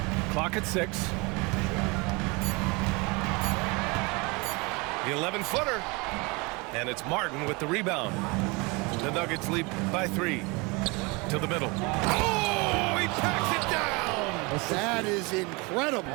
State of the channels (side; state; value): left; quieter; 27.4 dB